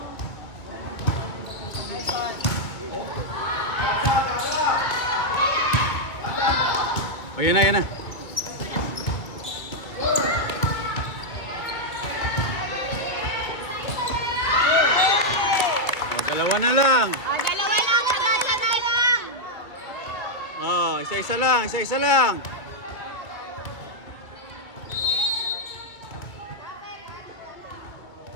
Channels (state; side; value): late; right; 2.2 ms